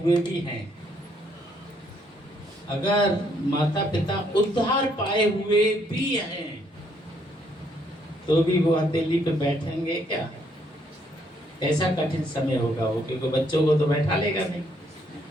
भी हैं, अगर माता पिता उद्धार पाए हुए भी हैं तो भी वो हथेली पे बैठेंगे क्या? ऐसा कठिन समय होगा वो, क्योंकि बच्चों को तो बैठा लेगा नहीं,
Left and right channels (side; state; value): both; normal; correlation 0.70